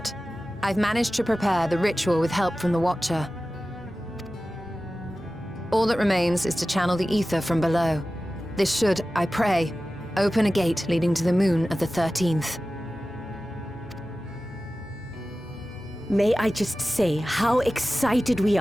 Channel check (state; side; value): normal; both; correlation 0.95